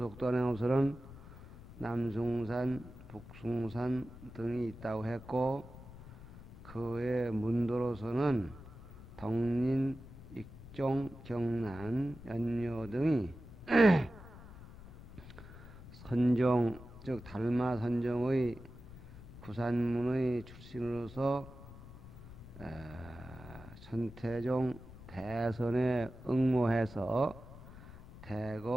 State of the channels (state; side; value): noise; left; rumble, 16 dB below the sound